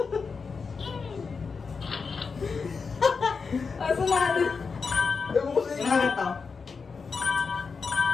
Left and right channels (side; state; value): right; quieter; 5.1 dB